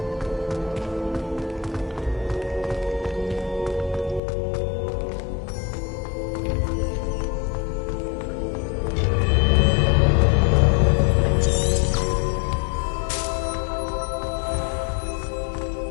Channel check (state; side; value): drops out; right; at 4.2 s